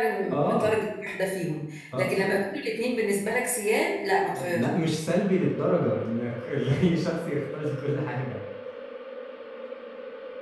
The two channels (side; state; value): both; identical; correlation 1.00